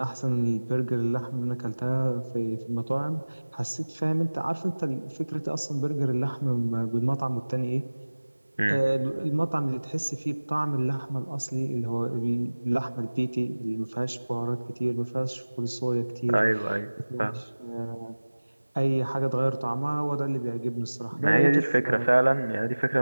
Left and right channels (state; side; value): inverted; both; correlation -1.00